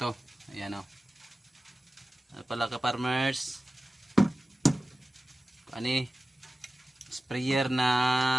Ayan o, pala kaparmers, ani sprayer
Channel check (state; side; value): normal; both; correlation 0.95